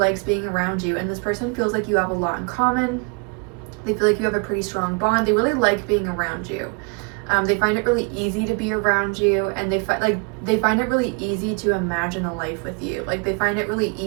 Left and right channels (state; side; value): quieter; left; 34.3 dB